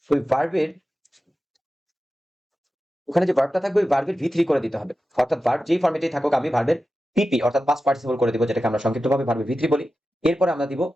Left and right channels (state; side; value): normal; both; correlation 0.93